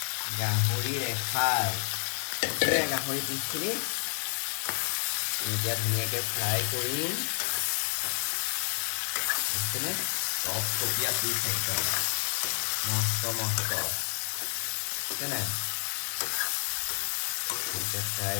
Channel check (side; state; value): right; silent; digital silence